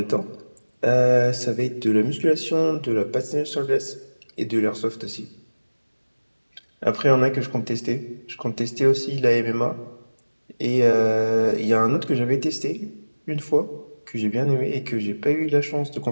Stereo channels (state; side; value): inverted; both; correlation -1.00